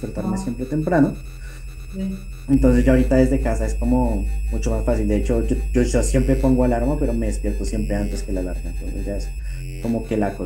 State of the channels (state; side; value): identical; both; correlation 1.00